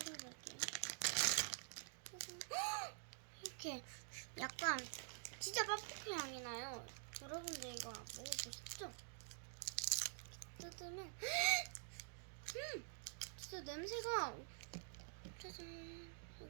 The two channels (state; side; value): silent; left; digital silence